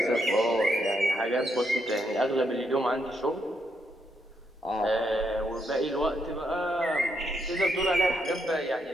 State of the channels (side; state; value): both; normal; correlation 0.78